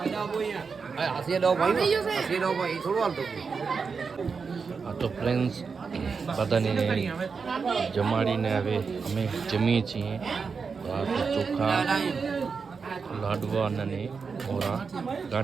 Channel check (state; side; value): quieter; left; 5.3 dB